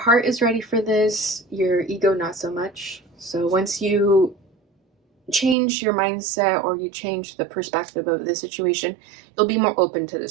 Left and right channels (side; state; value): left; drops out; at 5.6 s